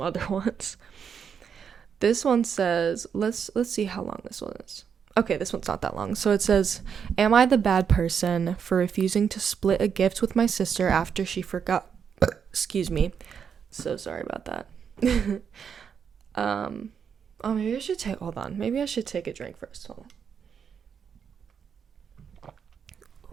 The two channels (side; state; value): left; quieter; 7.1 dB